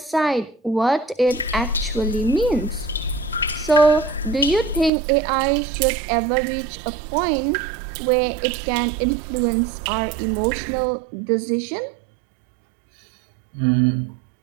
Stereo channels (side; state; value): left; drops out; at 4.9 s